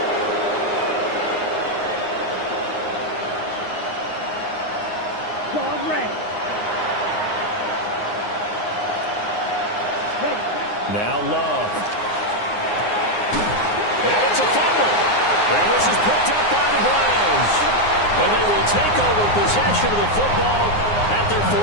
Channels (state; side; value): late; right; 9.7 ms